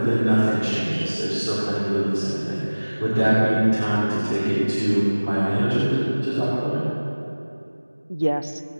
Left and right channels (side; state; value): both; inverted; correlation -1.00